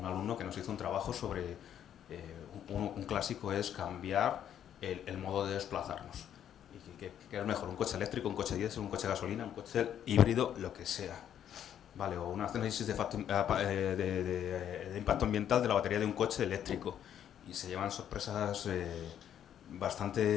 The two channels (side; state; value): right; quieter; 9.9 dB